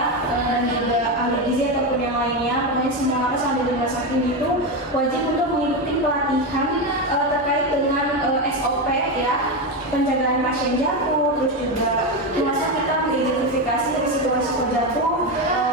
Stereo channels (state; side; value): normal; both; correlation 0.13